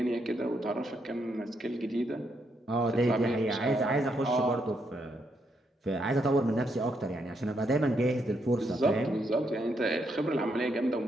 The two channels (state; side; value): normal; both; correlation 0.77